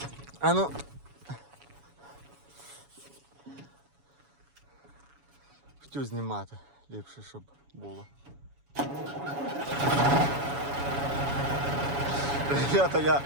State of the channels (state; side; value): late; left; 7.1 ms